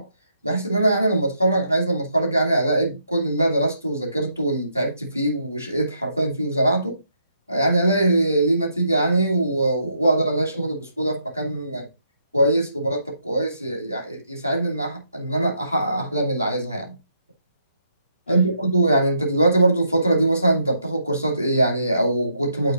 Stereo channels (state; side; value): inverted; both; correlation -0.76